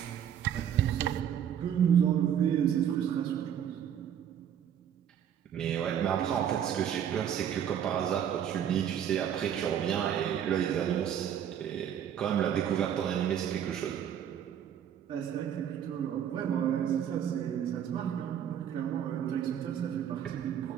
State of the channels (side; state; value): left; quieter; 9.3 dB